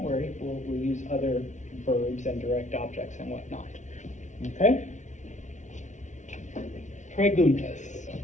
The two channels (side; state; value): right; late; 0.35 ms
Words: worry, we'll use other verbs and direct objects and whatnot. Okay? Preguntas.